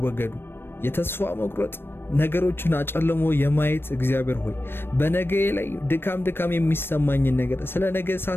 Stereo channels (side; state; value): right; late; 0.10 ms